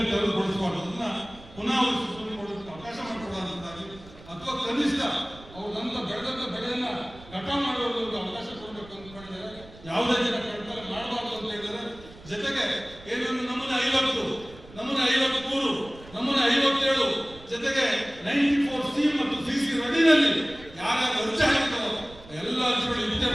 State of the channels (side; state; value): right; noise; rumble, 20 dB below the sound